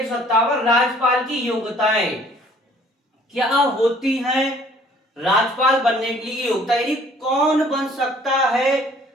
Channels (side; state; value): both; normal; correlation 0.57